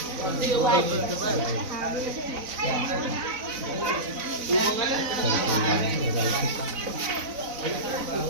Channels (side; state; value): left; late; 4.0 ms